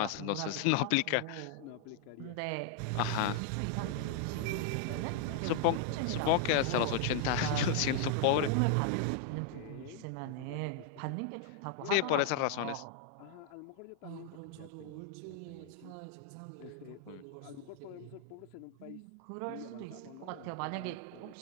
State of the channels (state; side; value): different; both; correlation 0.00